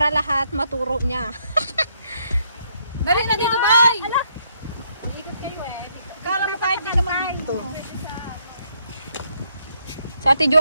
lahat maturo niya. Dali na dito, bay! Kala mo kahit di ka mag-dito. Sa Ate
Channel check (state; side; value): inverted; both; correlation -0.72